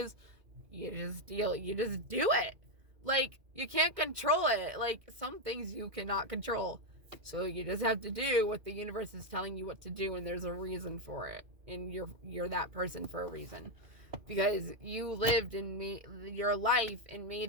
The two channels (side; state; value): left; late; 2.1 ms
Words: You just do it. Like, you can't control it. Like, some things you cannot control. So you just have to do what the universe is telling you what to do, and there's a reason for it. And you're that person for a reason. Because you lived and made your life and